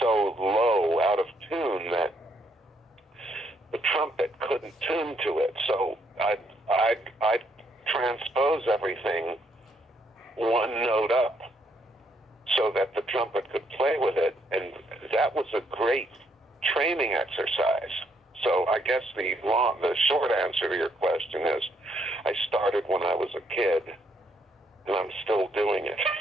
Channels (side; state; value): both; normal; correlation 0.72